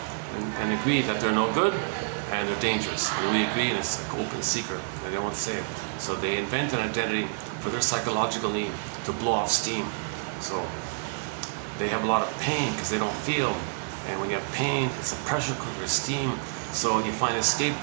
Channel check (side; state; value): left; silent; digital silence